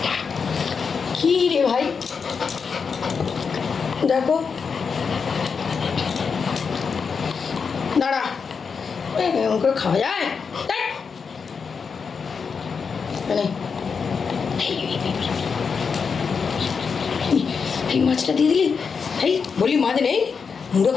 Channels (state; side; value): quieter; right; 5.7 dB